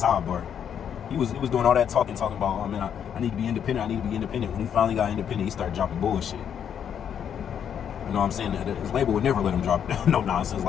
He was doing all that talking about, oh man, I need to be independent, When he finally got independent, he started dropping bullshit. You know what I'm saying? His label would never let him drop no nonsense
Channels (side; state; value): right; quieter; 8.5 dB